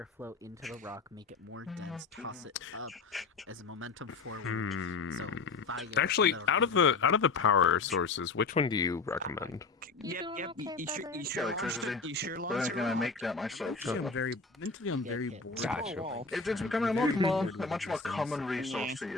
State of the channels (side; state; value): right; quieter; 4.2 dB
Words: into the rock, make it more dense, toss it up as a momentum forward. So fire. Actually, that'll out of the power sources, which one do you recommend? Yep. You Electricity. sure But lost I'm gonna make that myself. Mentally, So. I'm very bored. Gotcha. It's becoming a much more common resource to